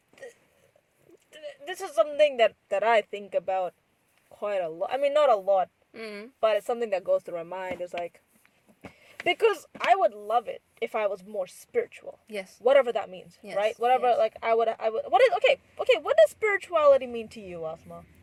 this is something that I think about quite a lot. I mean, not a lot, but it's something that goes through my mind. Is like, because I would love it if I was more spiritual. Yes. Whatever that means, Yes, right? Whatever, yes. like, I would, what is, okay, what does spirituality mean to you, Asma?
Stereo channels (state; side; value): identical; both; correlation 1.00